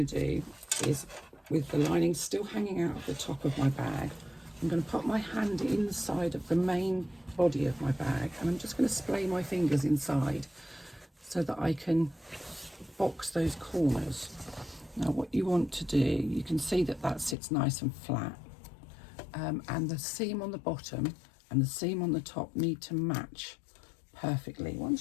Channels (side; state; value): right; drops out; at 17.4 s